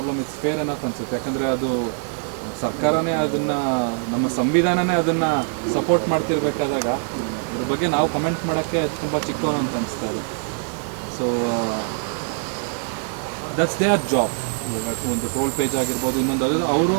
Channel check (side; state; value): left; silent; 64 dB below the other